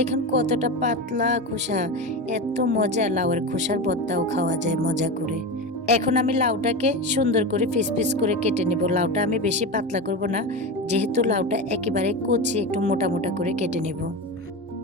কতটা পাতলা খোসা। এত মজা, লাউয়ের খোসার ভর্তাও খাওয়া যায় মজা করে। এখন আমি লাউটাকে সুন্দর করে পিস পিস করে কেটে নেব। লাউটা আমি বেশি পাতলা করব না, যেহেতু লাউটা একেবারে কচি, একটু মোটা মোটা করে কেটে নেব।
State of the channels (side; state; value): both; normal; correlation 0.22